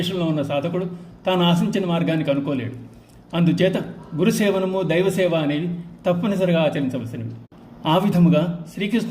ఉన్న సాధకుడు తాను ఆశించిన మార్గానికి అనుకోలేడు. అందుచేత గురుసేవనము, దైవసేవ అనేవి తప్పనిసరిగా ఆచరించవలసినవి. ఆ విధముగా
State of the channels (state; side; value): identical; both; correlation 1.00